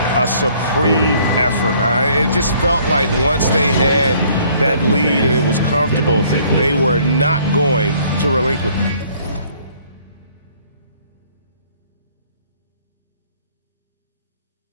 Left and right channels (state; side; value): inverted; both; correlation -0.60